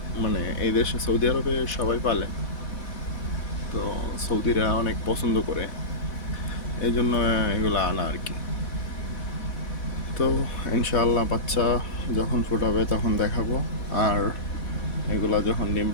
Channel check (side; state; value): right; late; 4.1 ms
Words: মানে এই দেশে সৌদি আরবে সবাই পালে, তো সৌদিরা অনেক পছন্দ করে, এই জন্য এগুলো আনা আর কি। তো ইনশাআল্লাহ বাচ্চা যখন ফুটাবে তখন দেখাবো, আর এগুলা যখন ডিম